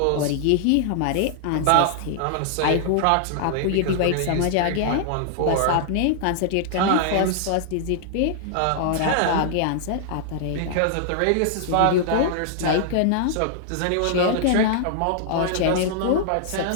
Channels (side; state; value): both; different; correlation -0.01